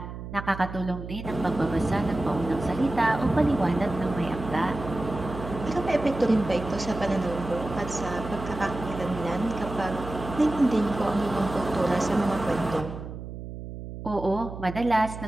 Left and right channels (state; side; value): noise; right; hum, 10 dB below the sound